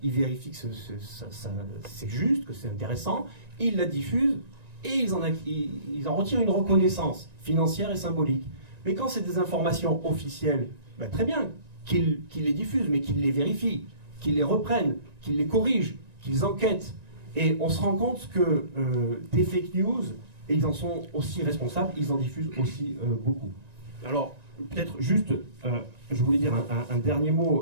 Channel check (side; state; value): left; late; 1.9 ms